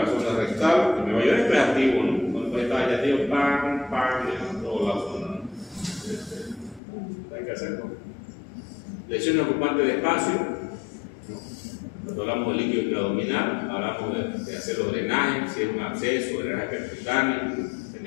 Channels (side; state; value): right; drops out; at 6.8 s